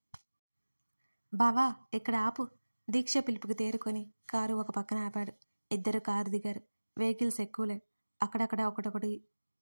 బావా, ఇక్కడ ఆపు. దీక్ష పిలుపుకి తేరుకొని కారు ఒక పక్కన ఆపాడు. ఇద్దరు కారు దిగారు. వెహికల్స్ ఎక్కువలే. అక్కడక్కడ ఒకటొకటి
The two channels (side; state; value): both; inverted; correlation -1.00